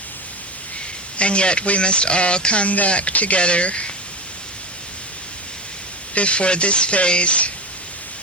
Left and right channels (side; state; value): both; normal; correlation 0.23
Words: and yet we must all come back together before this phase